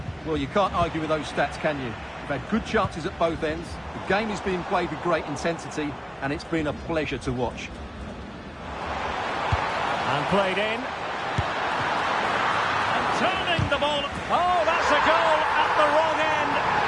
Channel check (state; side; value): identical; both; correlation 1.00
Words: Well, you can't argue with those stats, can you? You've had good chances at both ends. The game is being played with great intensity, and it's been a pleasure to watch. And played in. And turning the ball. Oh, that's a goal at the wrong end.